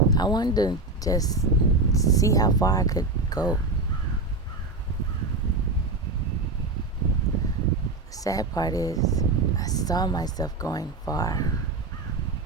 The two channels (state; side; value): quieter; left; 3.3 dB